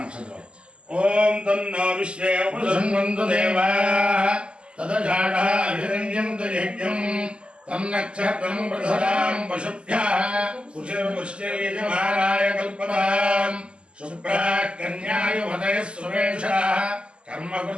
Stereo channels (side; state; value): left; late; 0.052 ms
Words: ఓం తన్నో విశ్వే ఉపసన్వంతు దేవా తదషాఢాభిరంజంతు యజ్ఞం తం నక్షత్రం ప్రధరాం పశుభ్యః కుశలపుష్టిర్యజమానాయ కల్పతాం శుభ్రాః కన్యాయువతయః సువేషాః